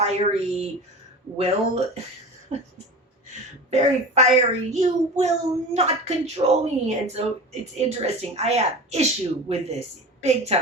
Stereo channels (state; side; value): normal; both; correlation 0.33